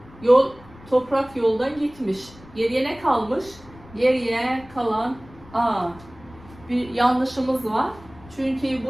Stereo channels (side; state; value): left; noise; rumble, 22 dB below the sound